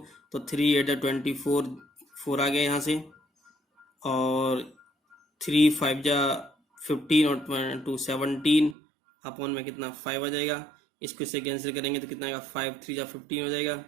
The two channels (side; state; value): left; drops out; at 8.8 s